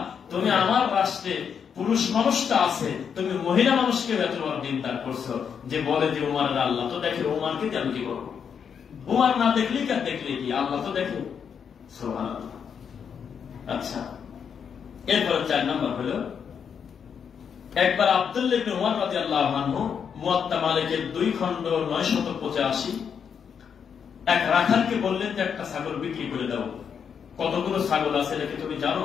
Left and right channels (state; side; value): quieter; right; 7.2 dB